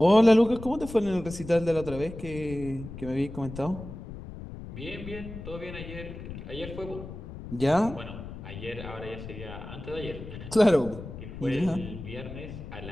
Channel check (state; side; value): noise; left; rumble, 11 dB below the sound